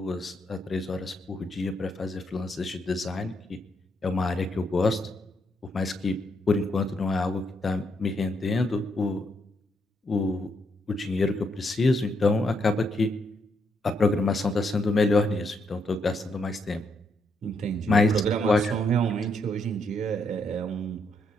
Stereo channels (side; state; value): both; normal; correlation 0.76